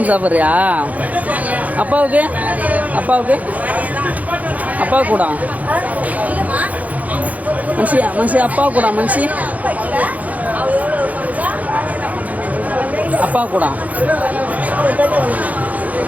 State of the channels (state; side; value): late; left; 0.075 ms